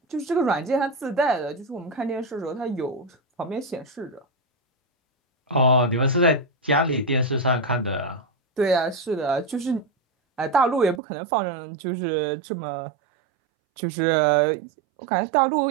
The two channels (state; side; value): drops out; left; at 11.0 s